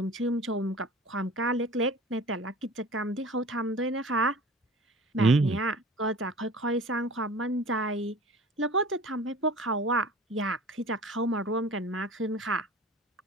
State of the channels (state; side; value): normal; both; correlation 0.42